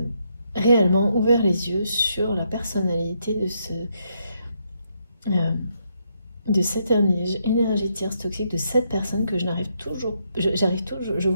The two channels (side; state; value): both; inverted; correlation -0.77